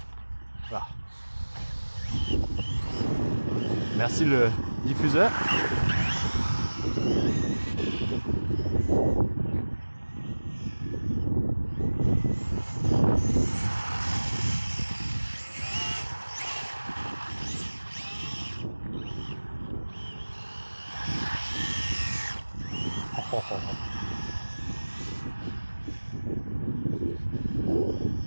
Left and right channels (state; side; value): inverted; both; correlation -1.00